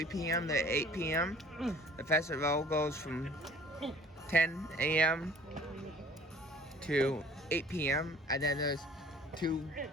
p.m. to 8 p.m. The festival goes from 10 a.m. to 8 p.m. And then there's 2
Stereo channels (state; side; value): normal; both; correlation 0.51